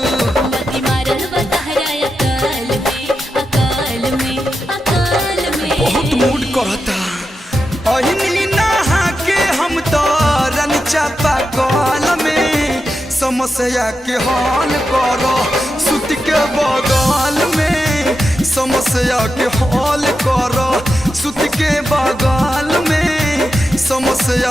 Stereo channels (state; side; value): normal; both; correlation 0.88